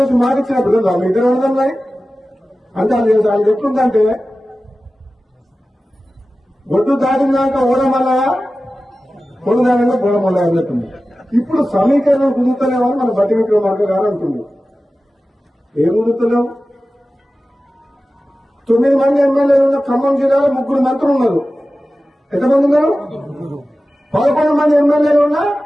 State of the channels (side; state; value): both; normal; correlation 0.95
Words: మాటిచ్చినప్పుడు కదా మీ ఇద్దరు అర్థం అంటే అది ఎట్లుందంటే ఒడ్డు దాటినాక ఓడమల్ల పొడుదానంగా బోడమల్ల అన్నట్టుంది. ఇప్పుడు సమీకరణం కుదురుతలేమని మన బట్టి విక్రమార్క గారు అంటుంది. ఏం కుదురుతలేవు? 9 మంది ఎమ్మెల్యేలు ఉన్న ఖమ్మం జిల్లాలో 3 మంత్రులు ఉన్నారు. ఎంతమంది ఉన్నారు? 11 మంది ఎమ్మెల్యేలు ఉన్నా